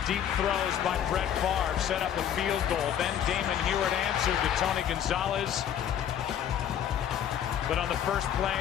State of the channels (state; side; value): quieter; right; 9.6 dB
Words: deep throws by Brett Favre set up a field goal. Then Damon Heward answered to Tony Gonzalez. But on the first play